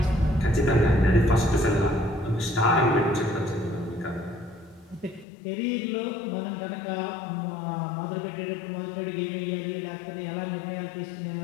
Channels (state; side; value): drops out; right; at 5.2 s